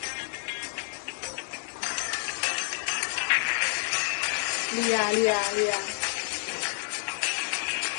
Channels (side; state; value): right; silent; 59 dB below the other